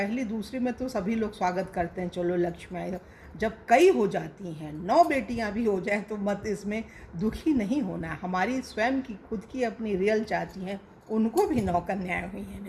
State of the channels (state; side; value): identical; both; correlation 1.00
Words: दूसरी में तो सभी लोग स्वागत करते हैं, चलो लक्ष्मी आई, जब कई हो जाती हैं, 9 बेटियां भी हो जाएं तो मत इसमें दुखी नहीं होना। हमारी स्वयं की खुद की अपनी रियल चाची हैं, उनको भी 9 कन्याएं हुई हैं